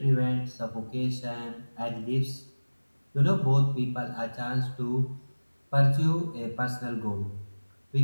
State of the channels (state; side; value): inverted; both; correlation -1.00